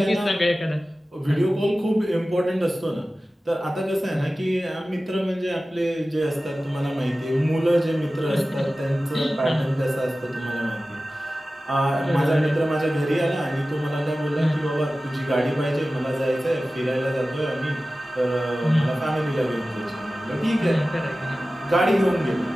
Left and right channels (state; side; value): normal; both; correlation 0.96